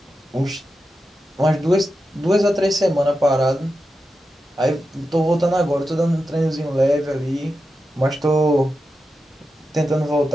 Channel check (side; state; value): both; normal; correlation 0.90